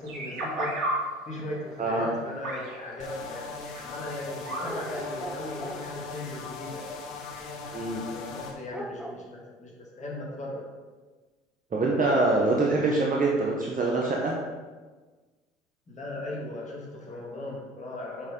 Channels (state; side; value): normal; both; correlation 0.47